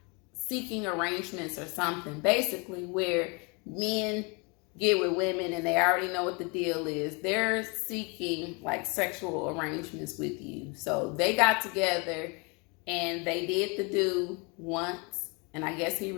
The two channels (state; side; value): quieter; right; 30.8 dB